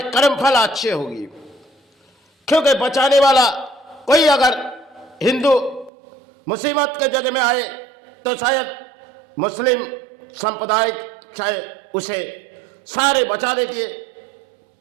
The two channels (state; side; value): drops out; left; at 5.9 s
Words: कर्म फल अच्छे होगी। क्योंकि बचाने वाला कोई अगर हिंदू मुसीबत के जगह में आए तो शायद मुस्लिम संप्रदाय शायद उसे सारे बचा देती है,